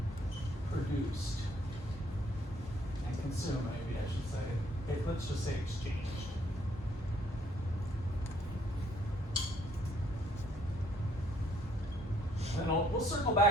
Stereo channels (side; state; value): both; normal; correlation 0.66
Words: produced and consumed, maybe I should say. Let's just say exchanged. And we'll circle